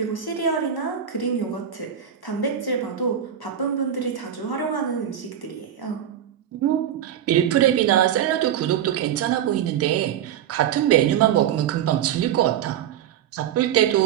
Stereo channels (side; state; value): left; quieter; 9.8 dB